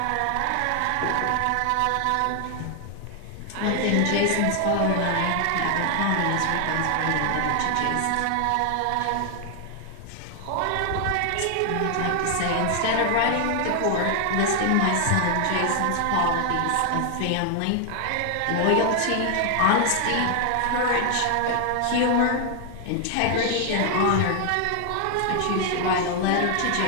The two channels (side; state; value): both; different; correlation 0.00